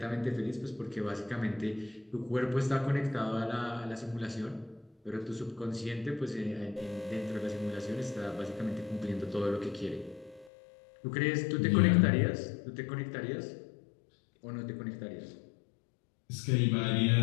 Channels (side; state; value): right; drops out; at 10.5 s